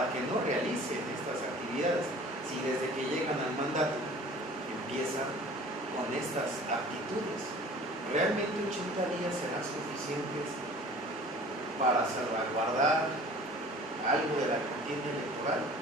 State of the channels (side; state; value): both; normal; correlation 0.46